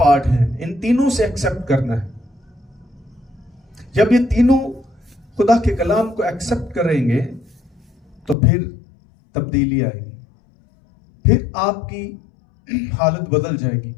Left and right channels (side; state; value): right; drops out; at 8.3 s